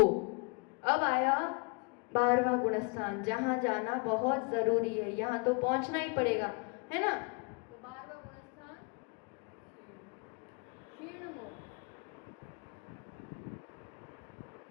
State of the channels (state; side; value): quieter; right; 32.4 dB